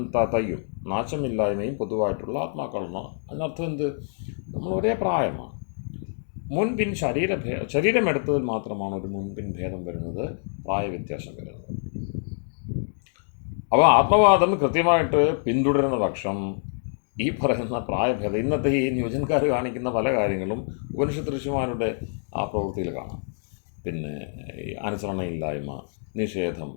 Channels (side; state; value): right; silent; digital silence